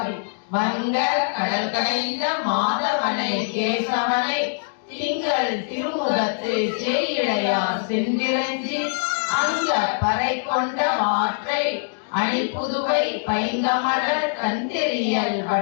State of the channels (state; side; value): silent; right; digital silence